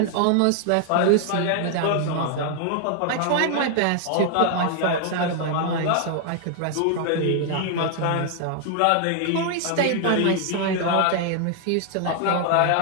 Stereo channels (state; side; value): different; both; correlation 0.00